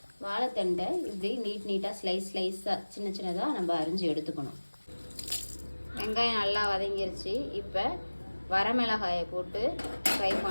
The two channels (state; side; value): inverted; both; correlation -1.00